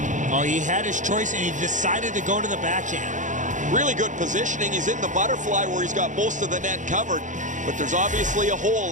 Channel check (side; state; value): left; late; 0.36 ms